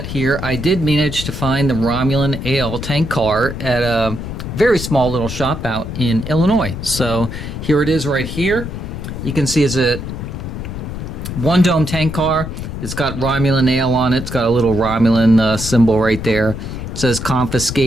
here. I did manage to find the Romulan AL tank car at a very small little shop out in Illinois. So here it is right here. You can see it's a one dome tank car. It's got Romulan AL on it. It's got a little Romulan symbol right there. It says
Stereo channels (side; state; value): left; noise; rumble, 7 dB below the sound